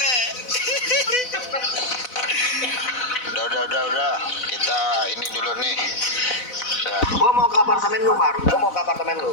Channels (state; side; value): late; right; 4.0 ms